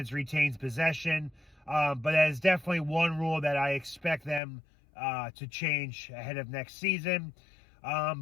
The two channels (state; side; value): drops out; right; at 4.4 s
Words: retains possession. But that is definitely one rule that I expect them to change ahead of next season.